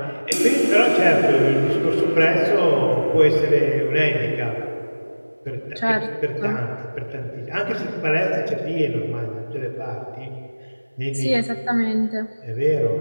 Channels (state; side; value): inverted; both; correlation -1.00